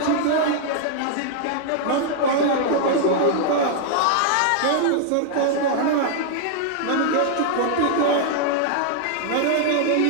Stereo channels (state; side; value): different; both; correlation 0.00